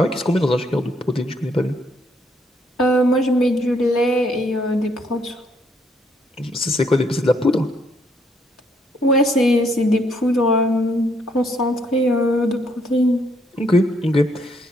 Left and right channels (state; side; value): normal; both; correlation 0.71